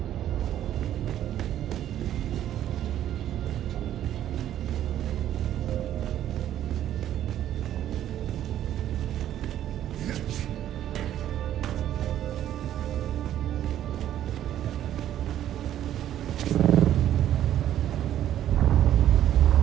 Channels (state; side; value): quieter; left; 11.6 dB